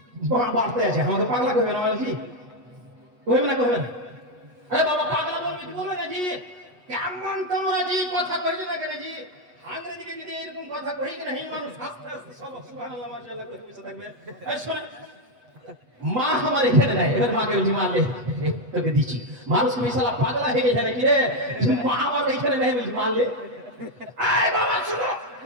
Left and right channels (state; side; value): late; left; 8.2 ms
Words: বাড়তে আছে, আমাকে পাগলা কইবে না বলছি, কইবে না কইবে না? আরে বাবা পাগলা বলবি কি বলবে না জি? কেমন তোমরা জি কথা কইছো না কেন জি? আঙ্গ্রেজি দিকে যদি এরকম কথা কই কেন এই মানুষ আস্তে আস্তে সব সুবহানাল্লাহ মাশাআল্লাহ করে পিছে থাকবে। এই শুনে মা আমার এখানে নাই, এবার মাকে বলছি মা লে তোকে দিচ্ছি। মানুষ কি শালা পাগলা হয়ে গেছে নাকি রে? মা আমার এখানে নাই বলছি মা লে। এই বাবা শুনো,